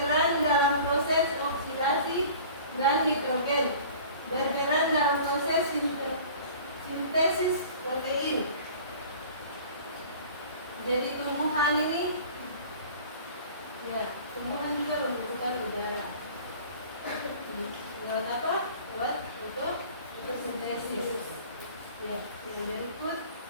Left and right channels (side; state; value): both; inverted; correlation -0.44